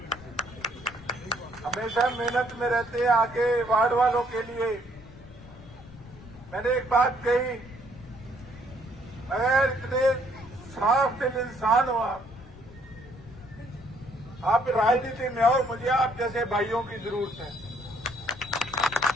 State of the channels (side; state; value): left; noise; rumble, 18 dB below the sound